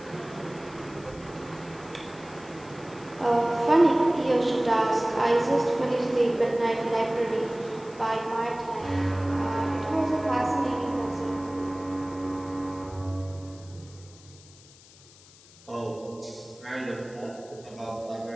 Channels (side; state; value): left; noise; hiss, 23 dB below the sound